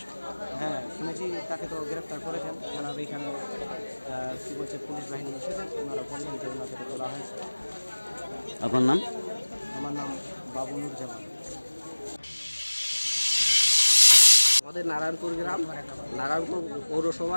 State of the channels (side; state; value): both; inverted; correlation -1.00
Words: হ্যাঁ, শুনেছি তাকে তো গ্রেপ্তার করেছেন। থানার এখানে কী বলছে পুলিশ বাহিনী এসেছেন, ওনারা বললেন যে ওনাকে তোলা হয়েছে। আপনার নাম? আমার নাম বাবুনুর জামান। আমাদের নারায়ণপুর গ্রাম, নারায়ণপুর পৌরসভা